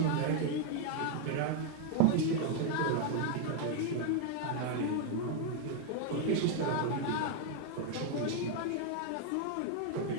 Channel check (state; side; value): different; both; correlation 0.01